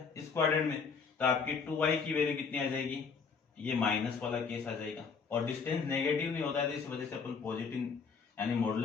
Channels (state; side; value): quieter; right; 5.5 dB